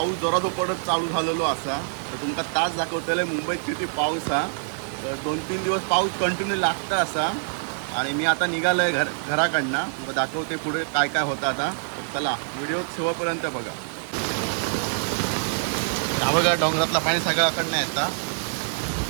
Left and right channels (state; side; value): silent; left; digital silence